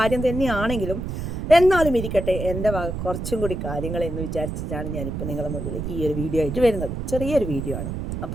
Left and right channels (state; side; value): noise; right; rumble, 4 dB below the sound